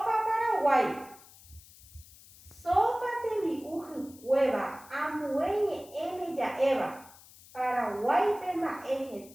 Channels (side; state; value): left; noise; hiss, 22 dB below the sound